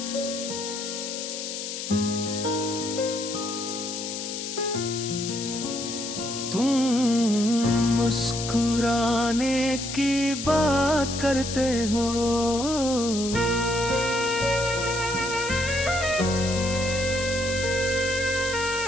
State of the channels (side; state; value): left; noise; hiss, 6 dB below the sound